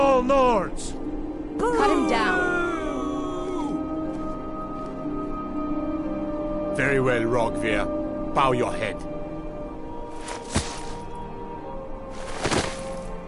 Nords. Cut him down. Very well, Rogver. Bow your head.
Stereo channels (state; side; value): identical; both; correlation 1.00